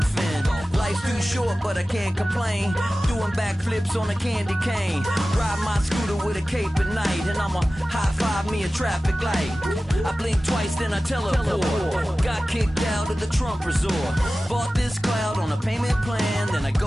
fin. Life's too short but I can't complain, doing backflips on a candy cane. Ride my scooter with a cape at night, and I'ma high five me a traffic light. I blink twice then I teleport, got kicked out of the Trump resort. Bought this cloud on a payment plan, then I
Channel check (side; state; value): both; normal; correlation 0.96